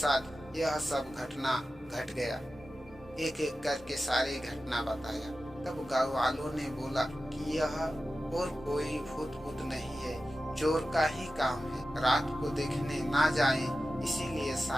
यह सब घटना घट गया। एक एक करके सारी घटना बताया। तब गाँव वालों ने बोला कि यह और कोई भूत नहीं है, चोर का ही काम है। रात को देखने ना जाएं, इसीलिए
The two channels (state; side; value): normal; both; correlation 0.93